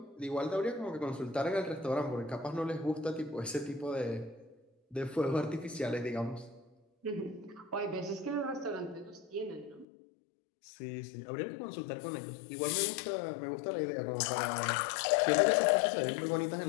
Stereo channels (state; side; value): drops out; right; at 9.9 s